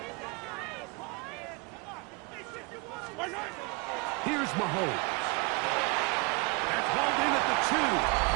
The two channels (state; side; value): quieter; left; 28.9 dB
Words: Here's Mahomes. That's hauled in at the 2.